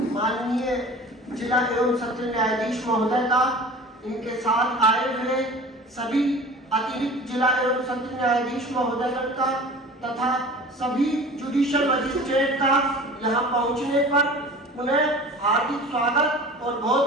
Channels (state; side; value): normal; both; correlation 0.40